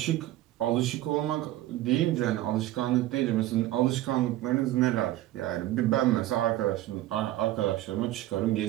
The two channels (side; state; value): left; quieter; 15.1 dB